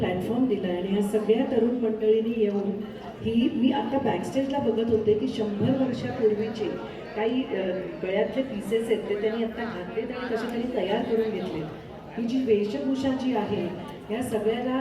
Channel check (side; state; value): both; identical; correlation 1.00